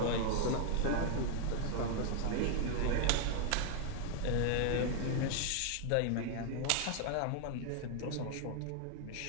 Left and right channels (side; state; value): both; different; correlation 0.00